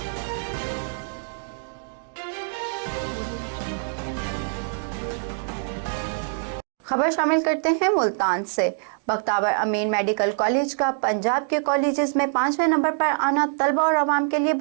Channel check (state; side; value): silent; left; digital silence